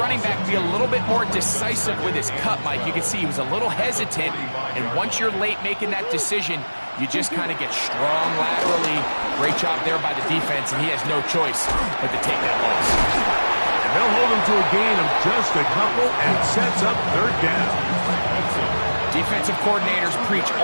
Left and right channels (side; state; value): both; inverted; correlation -1.00